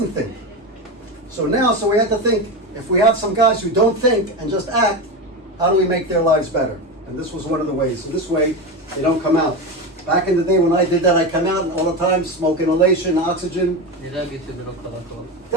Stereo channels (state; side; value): normal; both; correlation 0.19